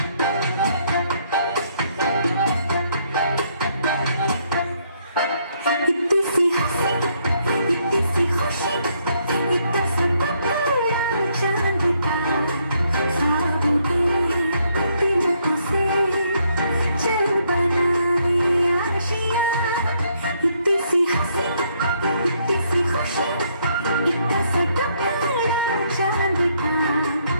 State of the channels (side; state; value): both; inverted; correlation -0.71